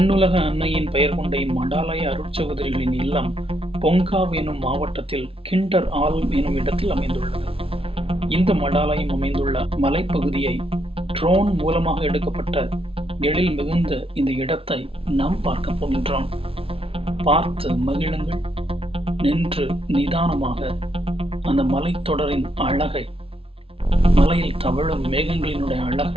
அன்னையின் பெயர் கொண்ட இம்மடாலய அருட்சகோதரிகளின் இல்லம் பொங்காவ் எனும் மாவட்டத்தில் கிண்டர்ஆல்ம் எனும் இடத்தில் அமைந்துள்ளது. இந்த மடாலயம் அமைந்துள்ள மலைப்பகுதியை ட்ரோன் மூலமாக எடுக்கப்பட்ட எழில் மிகுந்த இந்த இடத்தை நாம் பார்க்க போகின்றோம். பார்த்து மகிழுங்கள். நின்று நிதானமாக அந்த மலைத்தொடரின் அழகை, மலையில் தவழும் மேகங்களினுடைய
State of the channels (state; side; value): late; left; 0.27 ms